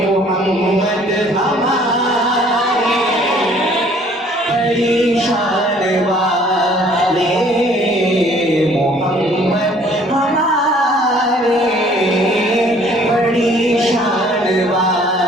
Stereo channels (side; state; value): both; normal; correlation 0.57